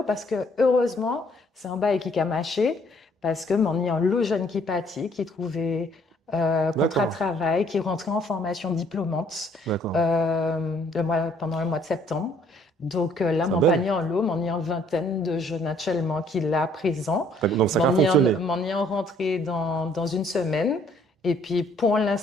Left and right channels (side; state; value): both; normal; correlation 0.62